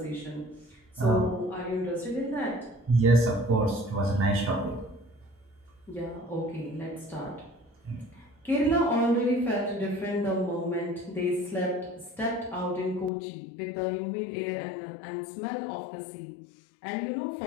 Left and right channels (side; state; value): right; drops out; at 13.1 s